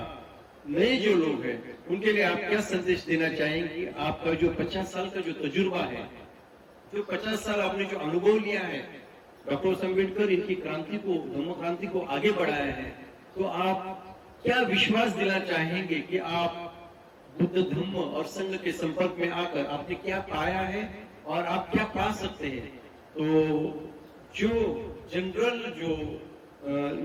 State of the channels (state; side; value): identical; both; correlation 1.00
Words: नए जो लोग हैं, उनके लिए आप क्या संदेश देना चाहेंगे? आपका जो 50 साल का जो तजुर्बा है, जो 50 साल आपने जो अनुभव लिया है, डॉक्टर अम्बेडकर इनकी क्रांति को, धम्म क्रांति को आगे बढ़ाया है, तो आप क्या विश्वास दिला चाहेंगे कि आप बुद्ध धम्म और संघ के संपर्क में आकर आपने क्या पाया है और आप क्या पा सकते हैं? तो जो जनरल जो